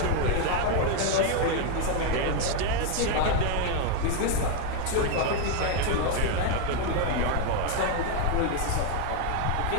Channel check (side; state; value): both; different; correlation 0.01